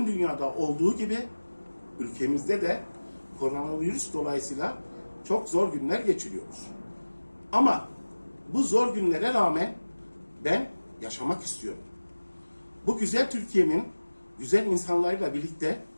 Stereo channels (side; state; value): both; inverted; correlation -1.00